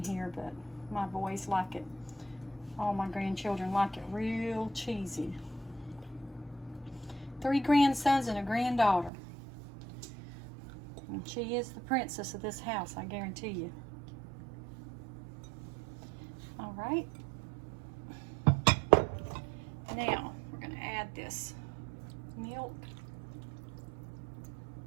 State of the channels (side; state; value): left; drops out; at 9.1 s